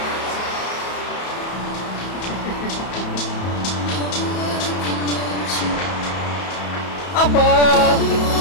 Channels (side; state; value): right; late; 31 ms